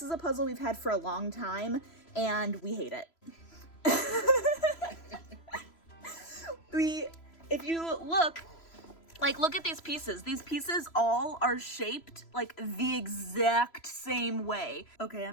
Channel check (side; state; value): right; late; 3.0 ms